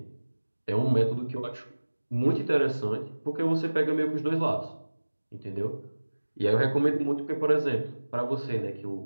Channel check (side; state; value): both; inverted; correlation -1.00